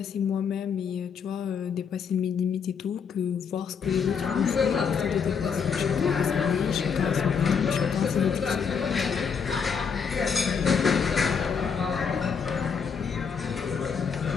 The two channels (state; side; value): quieter; right; 6.3 dB